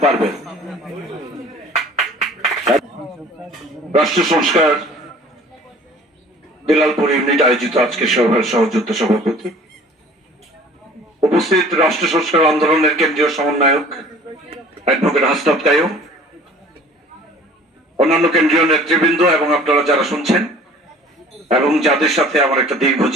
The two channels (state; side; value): normal; both; correlation 0.49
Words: পারভেজ। রাষ্ট্র সংস্কার বেলালপুর ইউনিট আয়োজিত আজকে সভার সহযোদ্ধা সভাপতি, উপস্থিত রাষ্ট্র সংস্কার আন্দোলনের কেন্দ্রীয় সমন্বয়ক অ্যাডভোকেট হাসনাত কাইয়ুম, অন্যান্য কেন্দ্রীয় নেতৃবৃন্দ এবং আপনারা যারা শুনছেন এবং যাদের সাথে আমার একটা দীর্ঘ